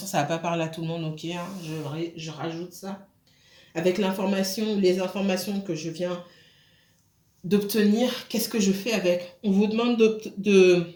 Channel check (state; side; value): identical; both; correlation 1.00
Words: ça ne va pas parler à tout le monde, ok, hein, je rajoute ça. Avec l'information, les informations que je viens d'obtenir, qu'est-ce que je fais avec? On vous demande